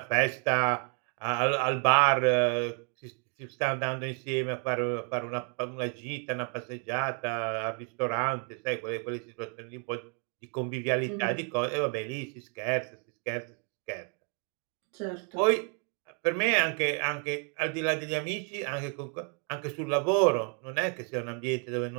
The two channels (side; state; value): left; quieter; 38.9 dB